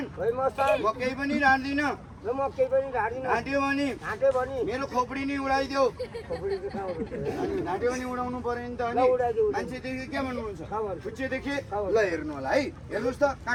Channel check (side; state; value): both; identical; correlation 1.00